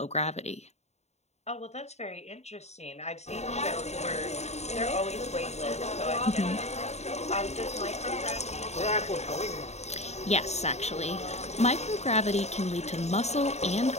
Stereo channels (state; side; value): late; right; 0.32 ms